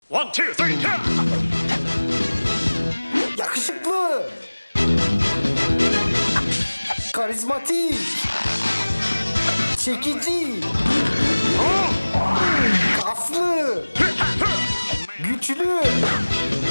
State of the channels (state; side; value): inverted; both; correlation -1.00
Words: One, two, three, yeah! Yakışıklı, karizmatik, çekici, kaslı, güçlü.